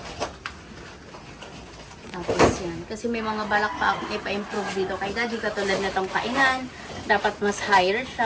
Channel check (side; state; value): both; identical; correlation 1.00